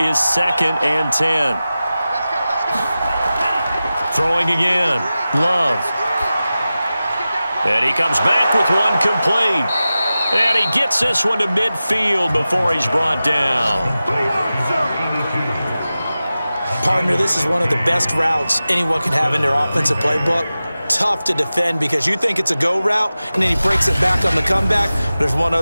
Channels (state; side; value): inverted; both; correlation -0.95